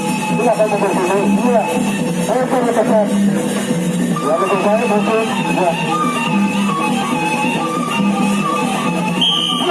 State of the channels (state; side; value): identical; both; correlation 1.00